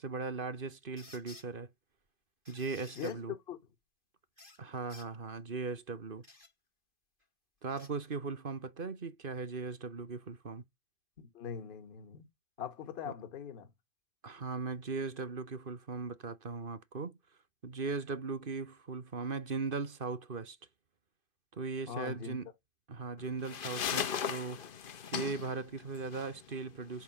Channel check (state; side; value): late; left; 2.5 ms